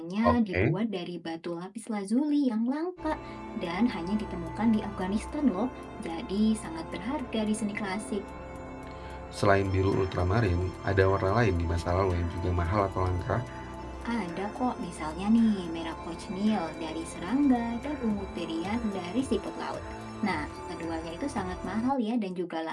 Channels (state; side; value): identical; both; correlation 1.00